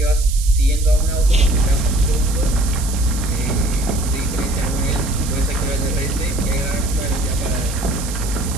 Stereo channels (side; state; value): right; noise; hiss, 10 dB below the sound